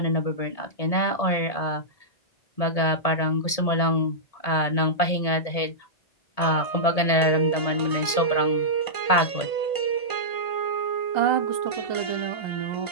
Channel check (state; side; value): late; right; 1.8 ms